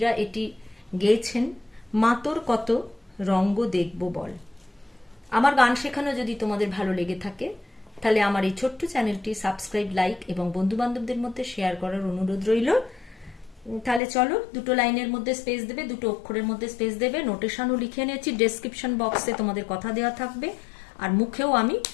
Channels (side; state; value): right; drops out; at 14.0 s